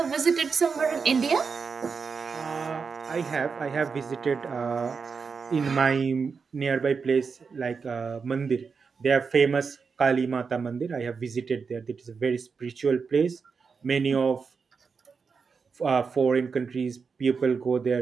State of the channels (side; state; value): left; quieter; 5.4 dB